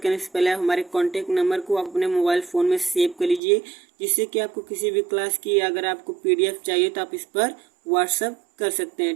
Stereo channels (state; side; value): drops out; left; at 3.4 s